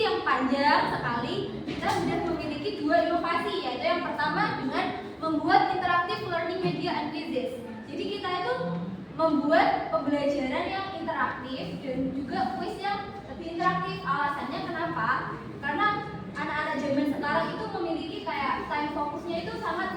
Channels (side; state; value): both; identical; correlation 1.00